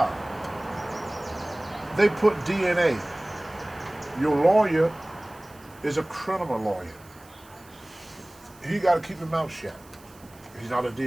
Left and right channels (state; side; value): noise; right; hiss, 25 dB below the sound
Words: They put DNA. Your lawyer is a criminal lawyer. He got to keep his mouth shut. He's not a